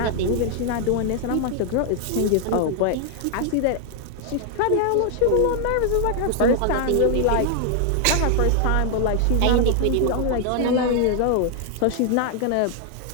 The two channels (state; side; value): different; both; correlation 0.00